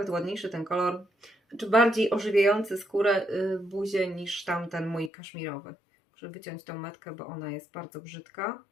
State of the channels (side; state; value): right; drops out; at 5.1 s